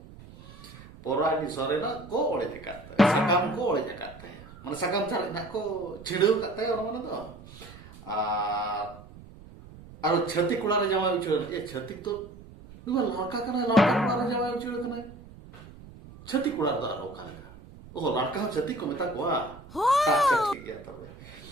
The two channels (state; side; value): noise; right; rumble, 19 dB below the sound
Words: Pora di sore na ko oleh kata, sakam ko oleh kata ya. Mana sakam cari nak ko cilu kata ya orang mana tuh. Aro छत्ती कुलारे जावा उचल ये छत्ती तो दुआ लड़का कना लड़का कुलारे जावा उचल कना छत्ती cooler दा रो काले ओ लड़का छत्ती को मेता को अच्छा ठीक है तब